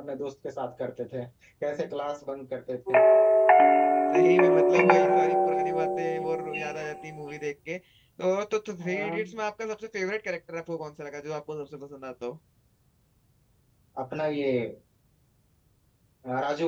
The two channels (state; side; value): identical; both; correlation 1.00